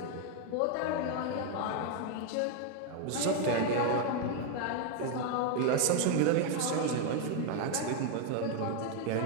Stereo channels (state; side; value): different; both; correlation 0.01